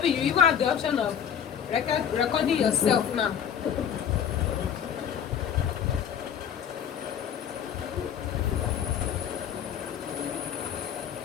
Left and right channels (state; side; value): quieter; right; 8.6 dB